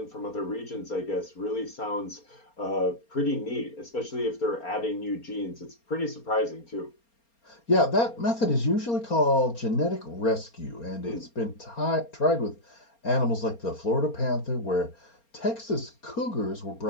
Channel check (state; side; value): late; right; 4.3 ms